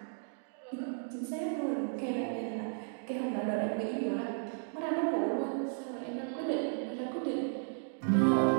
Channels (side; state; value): left; silent; digital silence